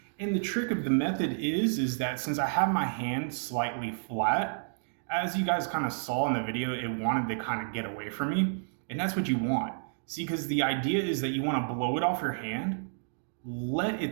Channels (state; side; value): silent; left; digital silence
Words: And the trick of the method is that since I have my hand slightly flat, as you guys kind of saw in the video, it wanted to kind of get away from me. And that's what you want. See, because the idea is that you want to blow it off your hand, let